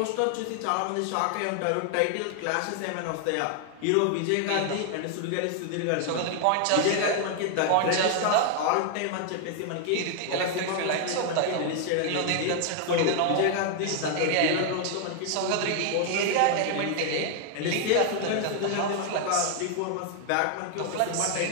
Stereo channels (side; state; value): both; different; correlation 0.00